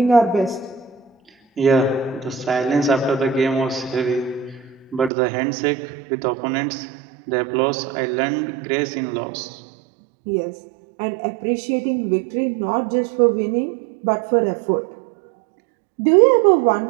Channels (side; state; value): left; drops out; at 5.1 s